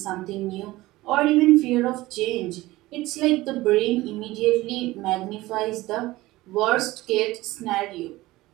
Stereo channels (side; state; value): left; quieter; 18.5 dB